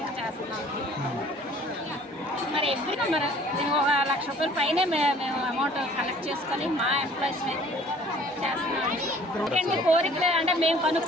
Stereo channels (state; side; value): normal; both; correlation 0.53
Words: చేస్తున్నాం. మరి ఎప్పుడు మరి మేము 1 లక్ష రూపాయల పైనే మేము అమౌంట్ కలెక్ట్ చేసుకొని మా ఎంప్లాయీస్ మీద చేస్తున్నాం. ఎందుకంటే కోరికలు అంటే మేము